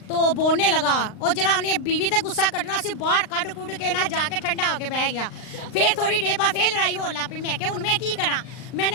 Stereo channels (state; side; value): late; right; 39 ms